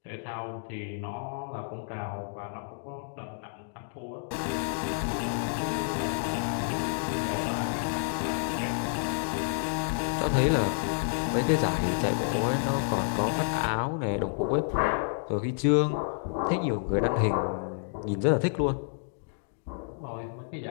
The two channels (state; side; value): silent; right; digital silence